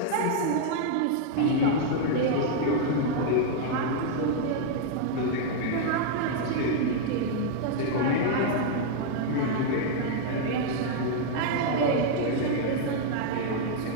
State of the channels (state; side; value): different; both; correlation 0.00